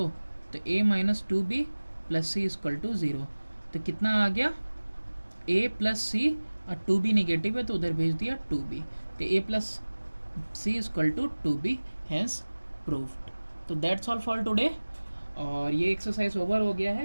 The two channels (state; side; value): inverted; both; correlation -1.00